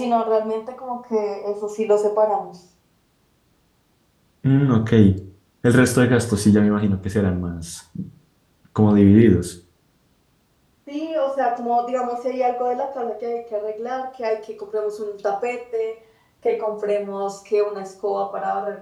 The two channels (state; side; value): identical; both; correlation 1.00